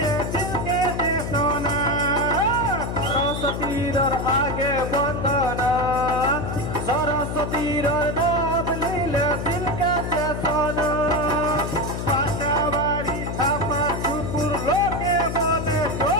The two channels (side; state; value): left; noise; hum, 4 dB below the sound